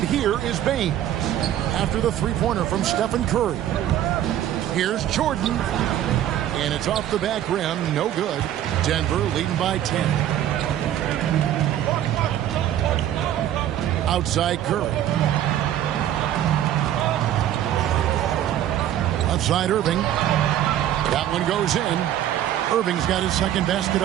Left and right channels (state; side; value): quieter; left; 11.6 dB